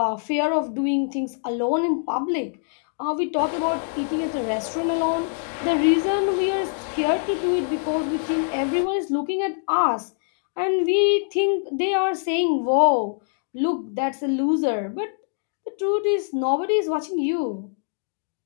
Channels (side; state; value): right; silent; digital silence